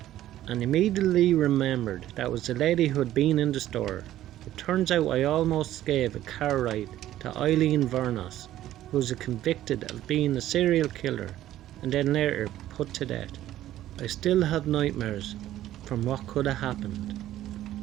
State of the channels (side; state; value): left; quieter; 13.4 dB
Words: and immediately remembered that was the lady who had been in the store. It turns out I almost gave a car ride to Eileen Vernos, who was convicted of being a serial killer and then later put to death. I still have nightmares from what could have happened.